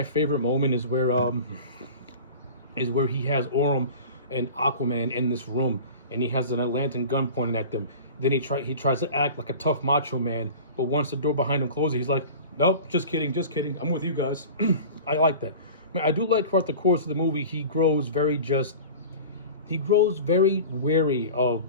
favorite moment is where he has Orm and Aquaman in this room, and he has an Atlantean gun pointing at them. Then he tries to act like a tough macho man, but once the door behind him closes, he's like, "Nope, just kidding. I'm with you guys." I like that. I do like throughout the course of the movie, he grows very wary of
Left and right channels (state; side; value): inverted; both; correlation -0.37